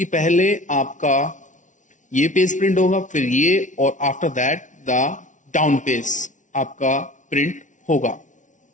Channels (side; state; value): right; late; 0.37 ms